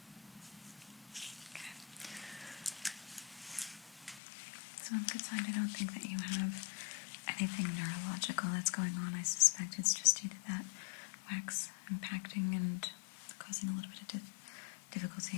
Okay. So on the good side, I don't think that you have anything neurological that's going on. I suspect it's just due to that wax impacting and causing a little bit of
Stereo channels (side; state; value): right; drops out; at 4.2 s